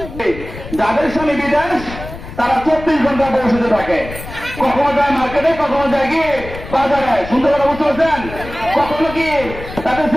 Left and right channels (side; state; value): left; noise; rumble, 12 dB below the sound